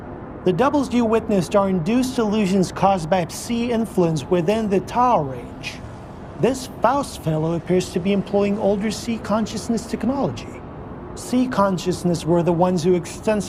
The doubles you witnessed are induced illusions caused by psi influence within the Tau range. This Faust fellow appears to be employing older psi consciousness technology. Psi consciousness were the ones who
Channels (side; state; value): both; identical; correlation 1.00